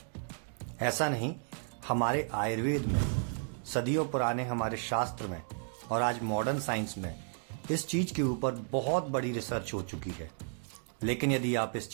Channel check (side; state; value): left; silent; 56 dB below the other